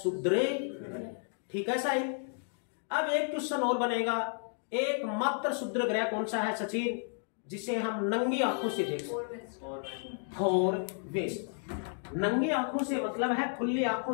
ग्रह। ठीक है साहिल। अब एक क्वेश्चन और बनेगा, एकमात्र क्षुद्र ग्रह कौन सा है सचिन जिसे हम नंगी आंखों से देख सकते? फोर वेस्ट। नंगी आंखों से मतलब है खुली आंखों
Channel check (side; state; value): right; silent; 56 dB below the other